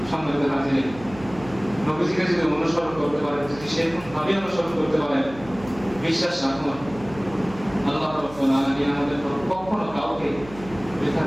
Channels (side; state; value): right; noise; hum, 17 dB below the sound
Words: সম্মানিত হাজির, নবীজিকে যদি অনুসরণ করতে পারেন, যদি সেরকম ভাবে অনুসরণ করতে পারেন, বিশ্বাস রাখুন আল্লাহ রাব্বুল আলামিন আমাদের কখনো কাউকে বৃথা